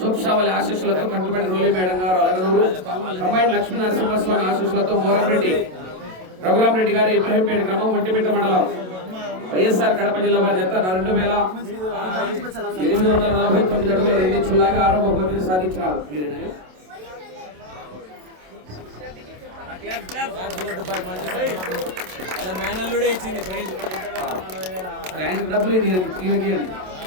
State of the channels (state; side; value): late; left; 27 ms